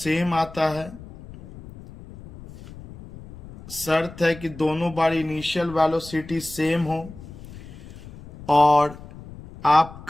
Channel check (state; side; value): noise; left; rumble, 17 dB below the sound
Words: आता है। शर्त है कि दोनों बार इनिशियल वेलोसिटी सेम हो और